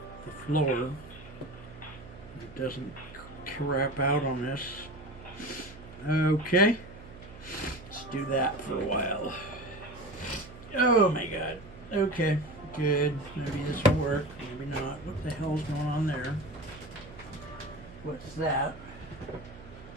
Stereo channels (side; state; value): right; noise; hum, 17 dB below the sound